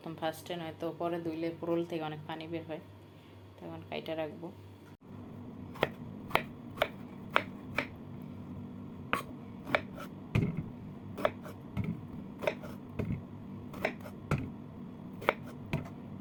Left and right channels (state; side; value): identical; both; correlation 1.00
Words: ফার্স্টে নয়তো পরে ধুইলে ফোড়ল থেকে অনেক পানি বের হয়, তখন কাইটা রাখবো।